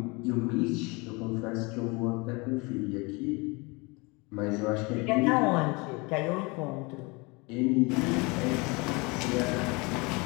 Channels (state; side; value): quieter; right; 27.3 dB